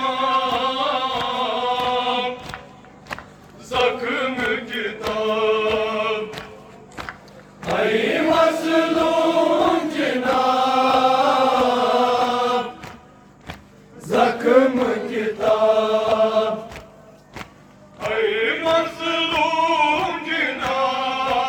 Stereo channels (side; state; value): both; identical; correlation 1.00